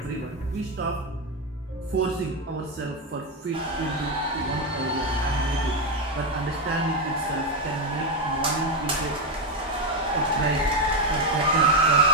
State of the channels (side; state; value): both; normal; correlation 0.08